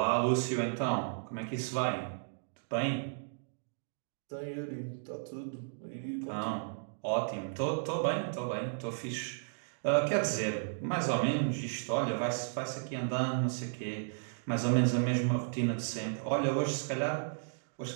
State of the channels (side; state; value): left; silent; digital silence